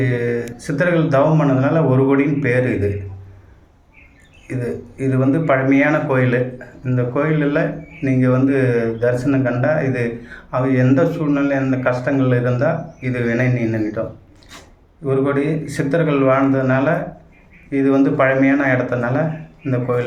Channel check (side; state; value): both; identical; correlation 1.00